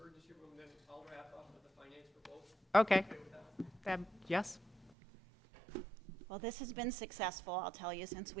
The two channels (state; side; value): drops out; left; at 4.9 s